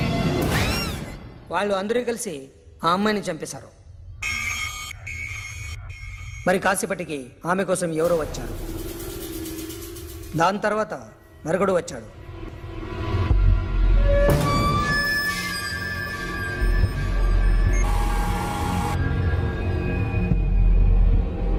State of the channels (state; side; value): identical; both; correlation 1.00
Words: వాళ్ళు అందరూ కలిసి ఆ అమ్మాయిని చంపేశారు. మరి కాసేపటికి ఆమె కోసం ఎవరో వచ్చారు. దాని తర్వాత మరొకడు వచ్చాడు.